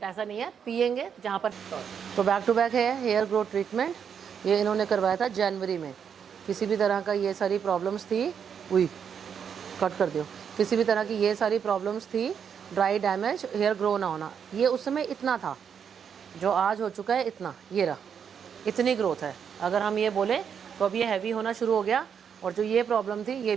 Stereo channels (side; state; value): left; quieter; 7.5 dB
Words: ऐसा नहीं है। पियेंगे जहाँ पर। तो बैक टू बैक है हेयर ग्रोथ ट्रीटमेंट। ये इन्होंने करवाया था जनवरी में। किसी भी तरह का ये सारी प्रॉब्लम्स थी, कट कर दो, किसी भी तरह की ये सारी प्रॉब्लम्स थी, ड्राई डैमेज, हेयर ग्रो ना होना, ये उस समय इतना था, जो आज हो चुका है इतना, ये रहा, इतनी ग्रोथ है। अगर हम ये बोले तो अब ये हैवी होना शुरू हो गया, और जो ये प्रॉब्लम थी ये